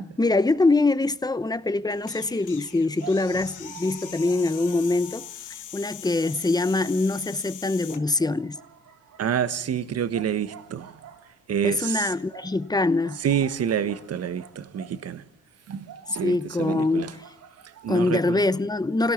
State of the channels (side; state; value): both; normal; correlation 0.64